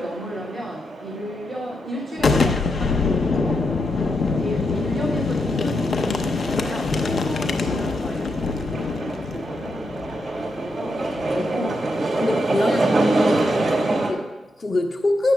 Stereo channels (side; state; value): both; normal; correlation 0.83